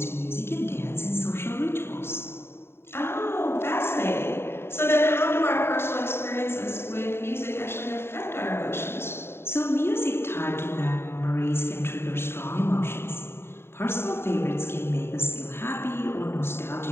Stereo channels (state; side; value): late; right; 0.11 ms